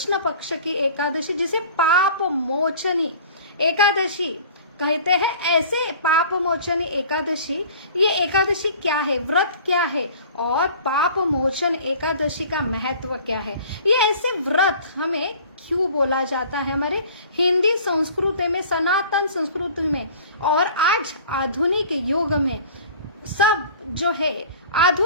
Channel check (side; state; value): both; inverted; correlation -0.45